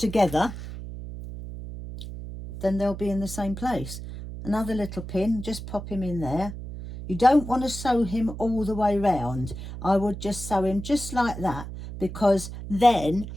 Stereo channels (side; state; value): right; noise; hum, 10 dB below the sound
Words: then they'll be in the same place. Another little pin, just pop him in there. You don't want to sew him all the way round. I would just sew him just like that, because then